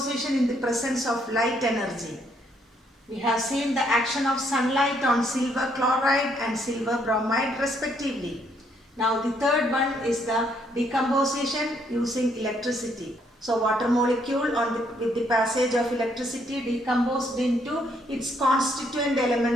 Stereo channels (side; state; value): both; normal; correlation 0.70